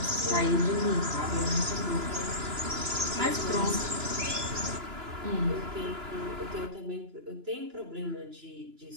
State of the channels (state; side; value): late; left; 2.9 ms